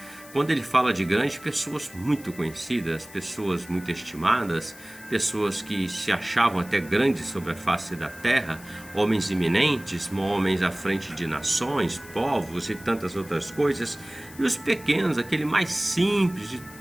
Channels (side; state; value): left; noise; hiss, 19 dB below the sound